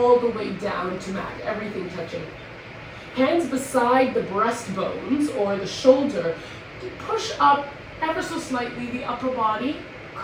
the way down to mat, everything touching. Hands beside the breastbones or the shoulder. Push up ever so slightly the upper body,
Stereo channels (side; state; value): both; identical; correlation 1.00